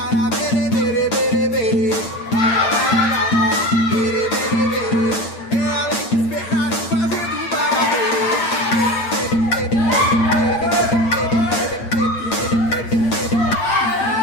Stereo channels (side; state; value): right; late; 8.8 ms